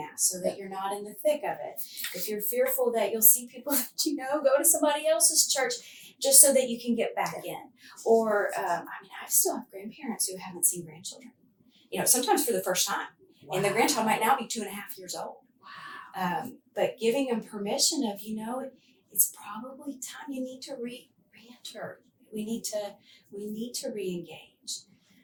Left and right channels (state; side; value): identical; both; correlation 1.00